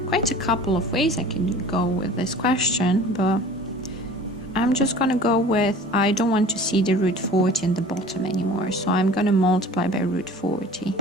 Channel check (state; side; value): normal; both; correlation 0.44